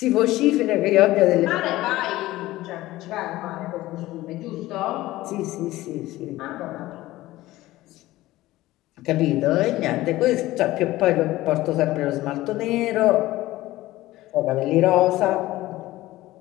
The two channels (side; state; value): right; quieter; 17.1 dB